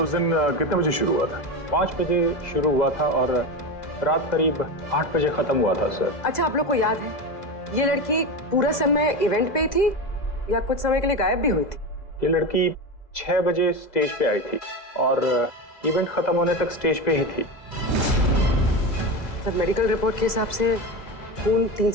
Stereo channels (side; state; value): right; late; 2.0 ms